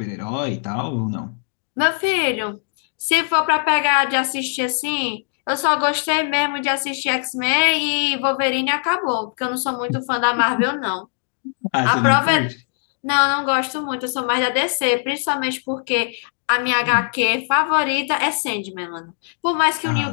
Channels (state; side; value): silent; right; 65 dB below the other